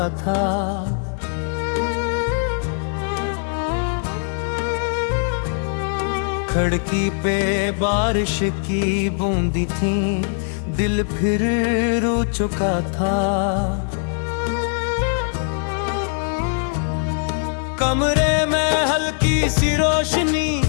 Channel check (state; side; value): silent; right; digital silence